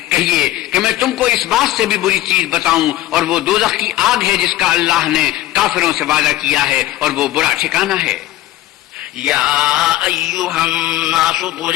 کہیے کہ میں تم کو اس بات سے بھی بری چیز بتاؤں، اور وہ دوزخ کی آگ ہے جس کا اللہ نے کافروں سے وعدہ کیا ہے، اور وہ برا ٹھکانہ ہے. یا ایھا الناس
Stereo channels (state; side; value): quieter; right; 15.2 dB